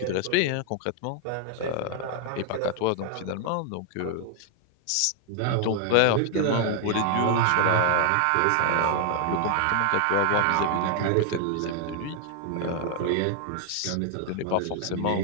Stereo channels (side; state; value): both; different; correlation 0.00